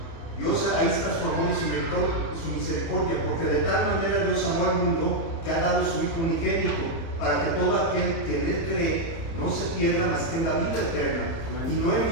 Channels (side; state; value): right; late; 31 ms